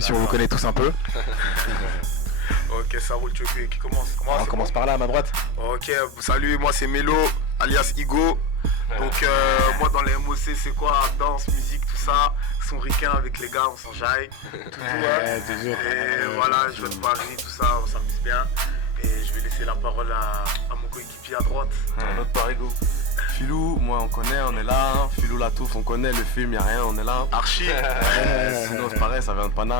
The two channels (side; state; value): left; late; 4.3 ms